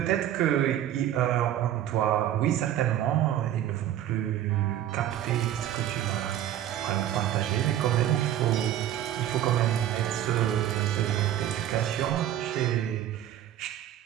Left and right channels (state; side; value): quieter; left; 11.7 dB